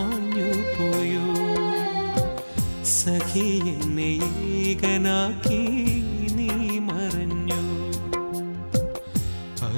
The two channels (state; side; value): inverted; both; correlation -1.00